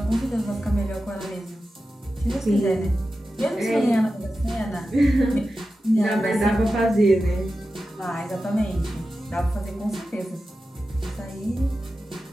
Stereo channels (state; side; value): normal; both; correlation 0.92